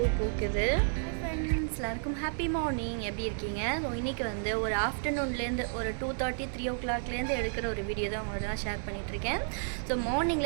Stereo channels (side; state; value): left; silent; digital silence